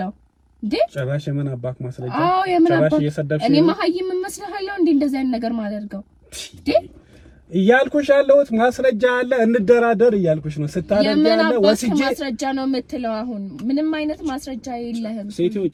እንዴ? ጭራሽ የምን አባክ ማስረጃ? አዎ የምን አባክ? እኔ መሀይም መስለሃለሁ እንዴ እንደዛ አይነት ነገር ማደርገው እንዴ? እያልኩሽ ያለሁት ማስረጃ አለ እንደራደር እያልኩሽ ነው። ስታደርግ ያለ ወስጄ ማስረጃ ነው የምትለው? አሁን ምንም አይነት ማስረጃ የለህም። ሴትዮ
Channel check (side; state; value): both; identical; correlation 1.00